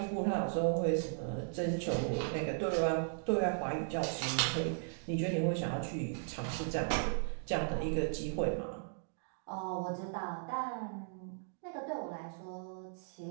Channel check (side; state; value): left; silent; digital silence